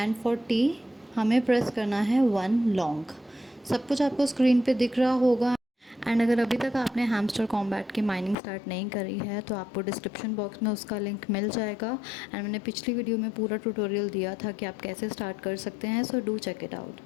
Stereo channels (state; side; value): drops out; right; at 8.3 s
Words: for T हमें प्रेस करना है 1 लॉन्ग। सब कुछ आपको स्क्रीन पे दिख रहा होगा। एंड अगर अभी तक आपने हैमस्टर कॉम्बैट की माइनिंग स्टार्ट नहीं करी है तो आपको डिस्क्रिप्शन बॉक्स में उसका लिंक मिल जाएगा। एंड मैंने पिछली वीडियो में पूरा ट्यूटोरियल दिया था कि आप कैसे स्टार्ट कर सकते हैं। So do check it out